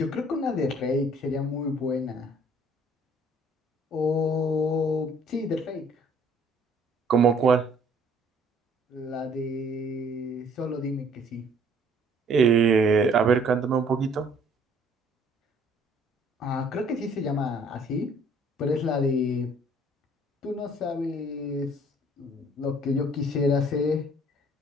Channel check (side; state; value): both; normal; correlation 0.58